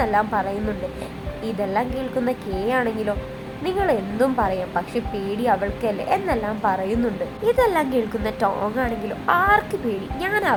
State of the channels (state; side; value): identical; both; correlation 1.00